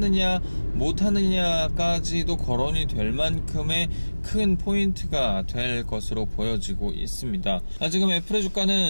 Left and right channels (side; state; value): both; inverted; correlation -1.00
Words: 못하느냐까지도 거론이 될 만큼의 큰 포인트가 될 것으로 보여지고 있습니다. 지금 애플의